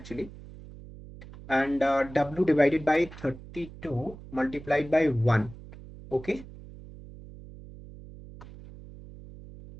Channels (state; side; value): noise; right; hum, 16 dB below the sound